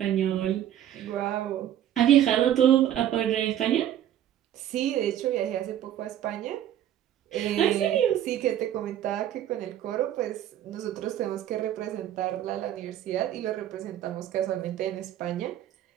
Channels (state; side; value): quieter; left; 11.4 dB